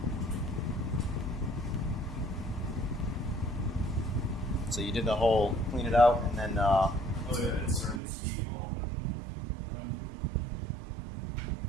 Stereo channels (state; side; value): drops out; left; at 8.0 s